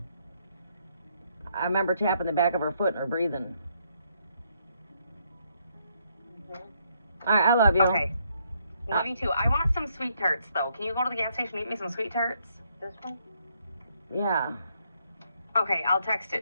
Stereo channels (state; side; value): inverted; both; correlation -0.73